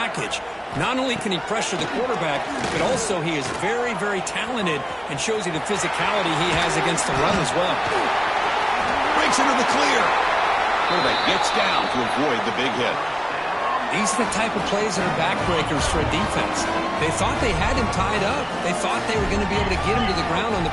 Not only can he pressure the quarterback, but also he is very, very talented and shows you the physicality he has against the run as well. Breaks into the clear. Quarterback gets down to avoid the big hit. These are the type of plays that are backbreakers for a defense. They thought they had him tied up. They thought they were going to be able to get him to the ground on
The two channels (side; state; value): both; identical; correlation 1.00